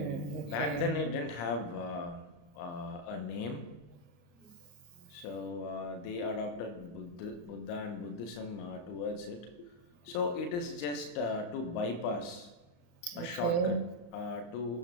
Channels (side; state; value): right; late; 35 ms